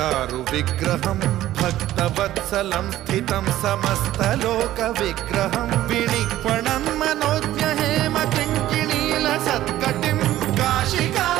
विग्रहं भक्तवत्सलं स्थितं समस्तलोकविग्रहं विनिक्वणं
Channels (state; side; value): quieter; left; 14.1 dB